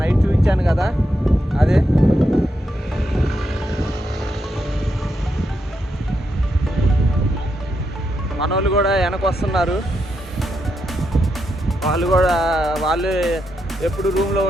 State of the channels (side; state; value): both; normal; correlation 0.83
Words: నైట్ చూపించాను కదా, అదే మనోళ్ళు కూడా వెనక వస్తున్నారు. వాళ్ళు ఎప్పుడు రూమ్లో